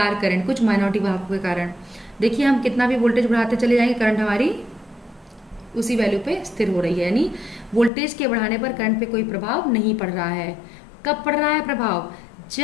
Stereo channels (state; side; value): drops out; right; at 7.9 s